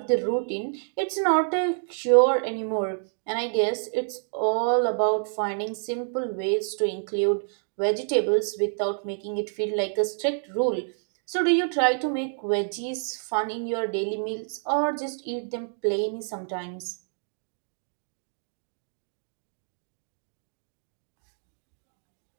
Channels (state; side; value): silent; left; digital silence